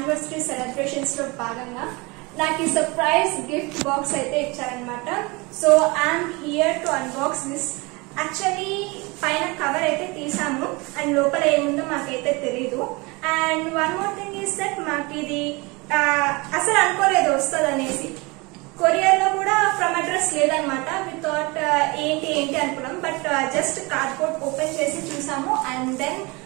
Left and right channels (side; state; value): left; quieter; 26.0 dB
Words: celebrations లో భాగంగా నాకు ఈ surprise gift box అయితే ఇచ్చారన్నమాట. So I'm here to unbox this. Actually పైన cover అయితే తీసాము అండ్ లోపల ఏముందో మాకైతే తెలీదు. And one more thing is that మాకు ఇది అసలు అనుకోలేదు వస్తుంది అనేసి. కొరియర్ లో కూడా ఫ్రమ్ అడ్రస్ లేదనమాట. వి థాట్ ఏంటి అనుకున్నాం. బట్ జస్ట్ కార్డ్బోర్డ్ ఓపెన్ చేసి చూసాము అండ్ దెన్